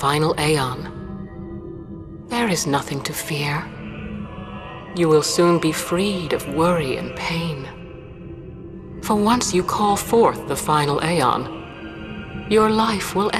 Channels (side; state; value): both; identical; correlation 1.00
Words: Aeon. There is nothing to fear. You will soon be freed of worry and pain. For once you call forth the final Aeon, your life will